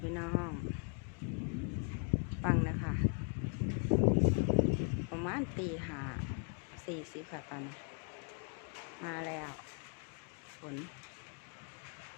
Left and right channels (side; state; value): right; quieter; 39.8 dB